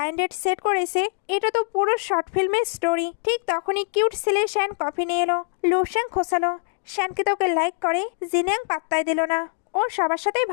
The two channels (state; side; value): silent; right; digital silence